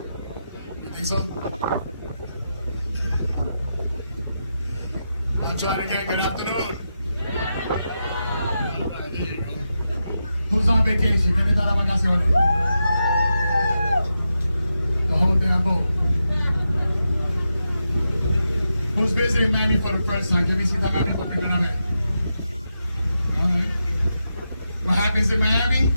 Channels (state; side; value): inverted; both; correlation -0.87